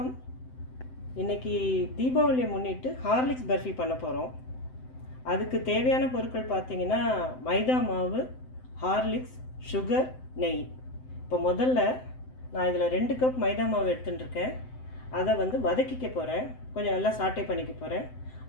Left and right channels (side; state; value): right; late; 7.8 ms